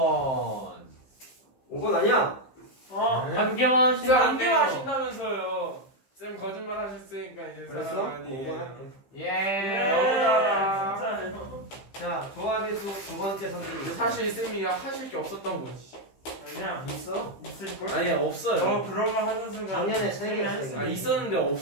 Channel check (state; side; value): late; right; 15 ms